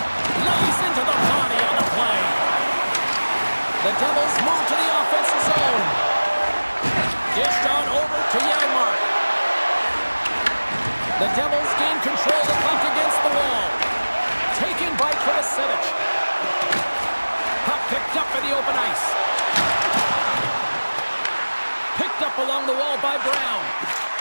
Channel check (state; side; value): inverted; both; correlation -1.00